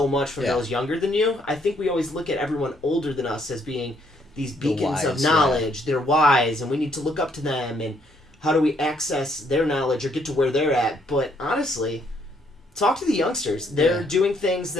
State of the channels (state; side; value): normal; both; correlation 0.69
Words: much from those younger than you. I think we always look at everyone older than us as being these beacons of knowledge. They're wise, and we need to look up to them. And how do we access their knowledge or get to where they're at? But honestly, talk to the youngsters. They're doing things